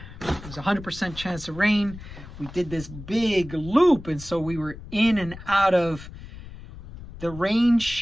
There was a 100% chance of rain. We did this big loop, and so we were in and out of the rain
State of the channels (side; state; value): left; noise; rumble, 15 dB below the sound